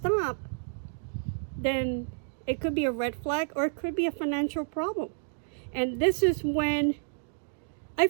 then it could be a red flag, or it could be a financial problem. And this is when I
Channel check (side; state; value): left; silent; digital silence